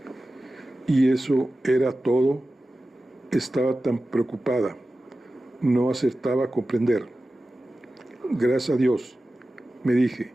Y eso era todo. Estaba tan preocupada. No acertaba a comprender. Gracias a Dios, me dije,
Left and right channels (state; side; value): normal; both; correlation 0.94